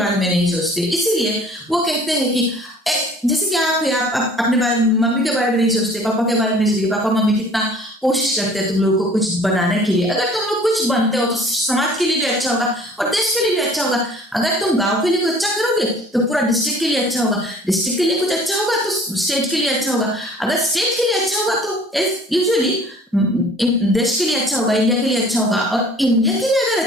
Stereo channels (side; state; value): both; normal; correlation 0.50